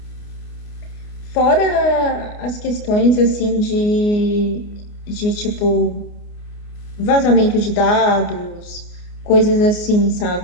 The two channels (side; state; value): right; late; 29 ms